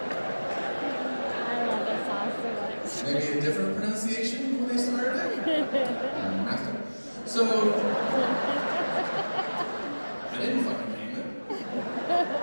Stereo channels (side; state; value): both; inverted; correlation -1.00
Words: maybe a different pronunciation when they started it? So, I didn't fucking name it.